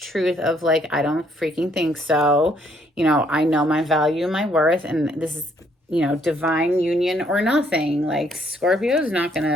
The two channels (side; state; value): both; normal; correlation 0.68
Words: of like, I don't freaking think so. You know, I know my value, my worth, and this is, you know, divine union or nothing. Like, Scorpio is not going